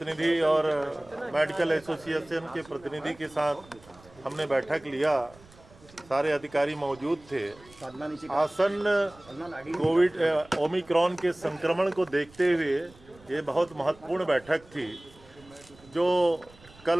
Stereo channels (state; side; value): noise; right; rumble, 25 dB below the sound